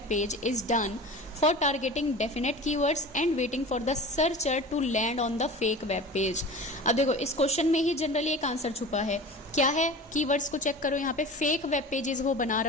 page is done for targeting definite keywords and waiting for the searcher to land on the fake web page। अब देखो इस क्वेश्चन में ही जनरली एक आंसर छुपा है। क्या है, कीवर्ड्स को चेक करो। यहाँ पे फेक वेब पेजेस वो बना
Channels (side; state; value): both; normal; correlation 0.36